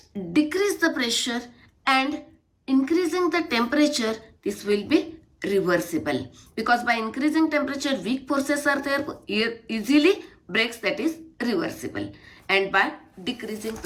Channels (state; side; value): identical; both; correlation 1.00